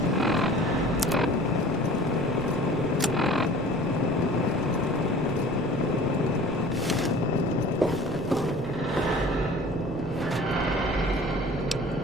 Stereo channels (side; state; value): right; noise; rumble, 11 dB below the sound